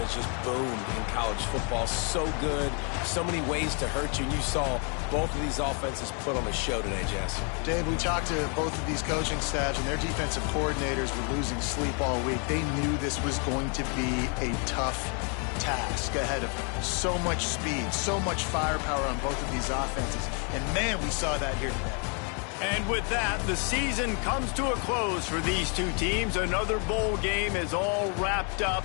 just boomed in college football. So good, so many ways to hurt you. And you saw both of these offenses put on a show today, Jess. Dave, we talked to both of these coaching staffs, and their defensive coordinators were losing sleep all week. They knew this was going to be a tough task ahead of them. So much speed, so much firepower on both of these offenses. And, man, we saw that here today. And with that, the season comes to a close for these two teams. Another bowl game is all wrapped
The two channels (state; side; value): quieter; right; 37.9 dB